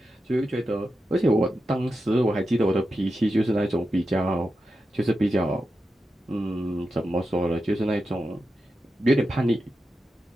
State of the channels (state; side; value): normal; both; correlation 0.89